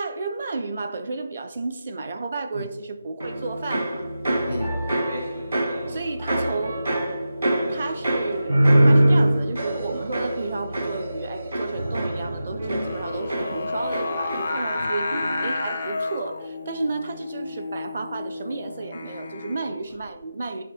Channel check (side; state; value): both; inverted; correlation -0.91